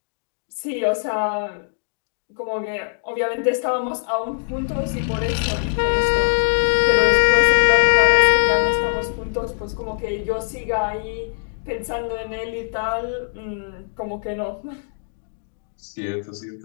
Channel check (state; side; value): silent; right; digital silence